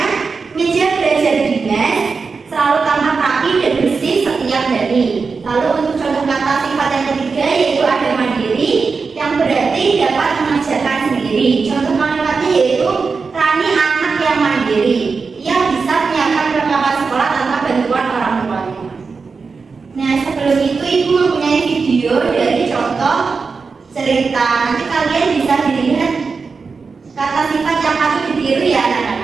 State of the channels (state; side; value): quieter; left; 4.8 dB